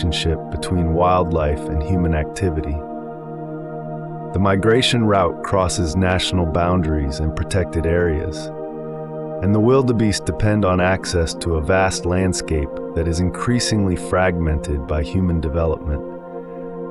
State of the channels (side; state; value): both; identical; correlation 1.00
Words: between wildlife and human activity. The migration route crosses national boundaries and protected areas, and the wildebeest depend on access to a vast landscape that is increasingly fragmented by human development.